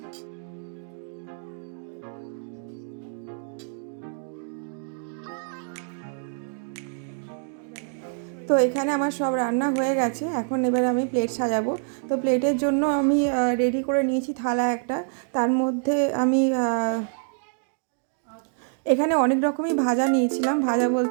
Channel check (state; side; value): silent; left; digital silence